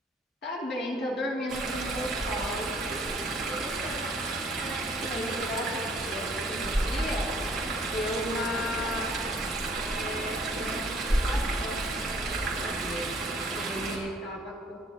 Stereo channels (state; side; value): normal; both; correlation 0.58